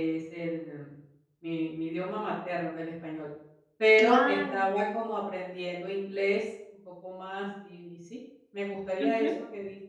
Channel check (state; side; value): identical; both; correlation 1.00